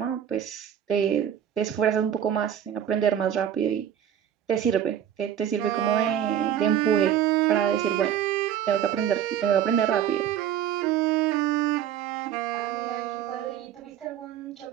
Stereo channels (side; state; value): left; quieter; 9.9 dB